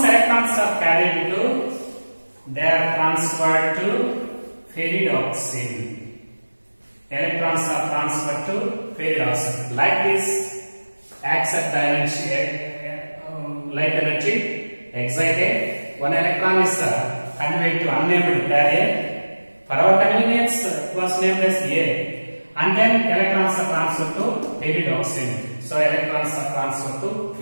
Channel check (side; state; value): both; inverted; correlation -1.00